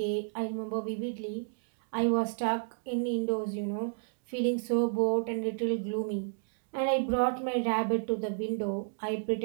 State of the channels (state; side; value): silent; left; digital silence